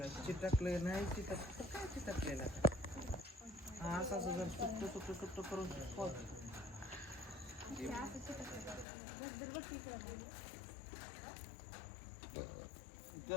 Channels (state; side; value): drops out; right; at 8.8 s